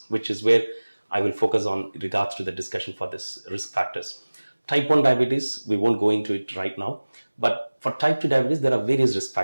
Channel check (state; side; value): inverted; both; correlation -1.00